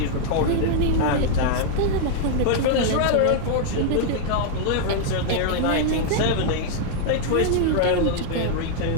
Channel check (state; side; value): different; both; correlation -0.01